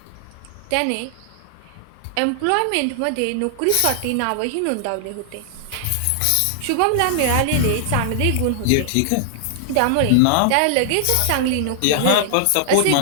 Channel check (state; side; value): different; both; correlation 0.00